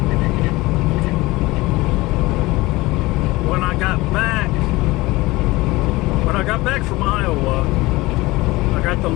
when I got back from Iowa, I got the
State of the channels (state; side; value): quieter; right; 20.7 dB